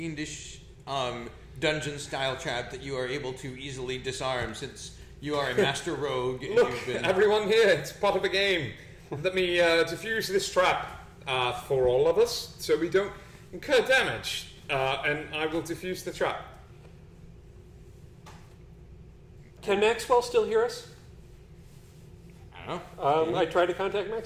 dungeon-style trap that you are able to easily disarm, since you are a master rogue. And Look, you've been... everyone here, it's part of the game. Let me defuse this trap for all of us, so we don't incur damage. And I will defuse the trap. Can Maxwell still hear us? I don't know. I tried to contact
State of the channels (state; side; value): identical; both; correlation 1.00